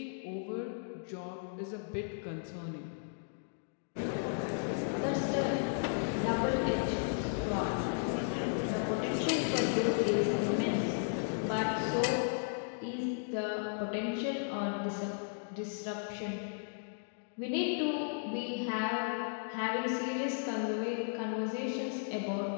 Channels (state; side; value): silent; right; digital silence